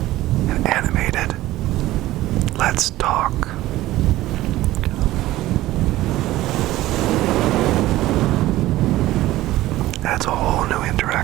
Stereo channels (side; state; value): left; quieter; 16.1 dB